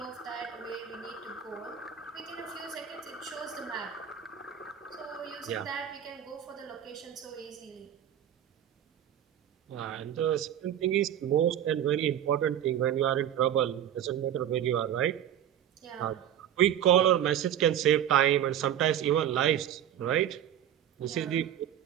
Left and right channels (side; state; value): left; quieter; 10.4 dB